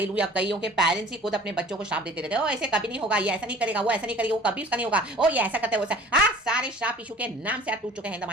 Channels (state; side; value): normal; both; correlation 0.47